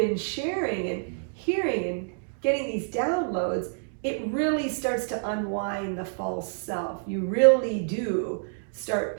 sharing and hearing and getting these downloads, it really starts to unwind the false self. You really do start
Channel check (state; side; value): silent; left; digital silence